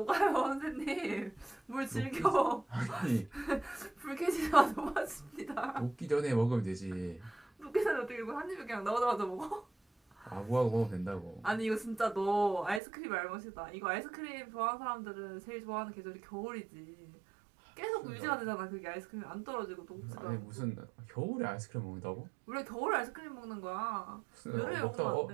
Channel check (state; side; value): drops out; left; at 12.8 s